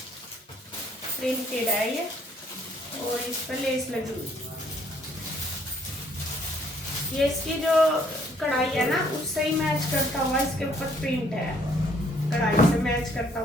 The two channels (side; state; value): both; normal; correlation 0.64